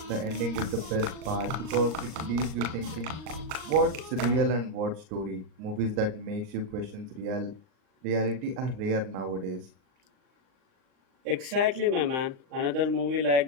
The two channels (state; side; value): late; left; 39 ms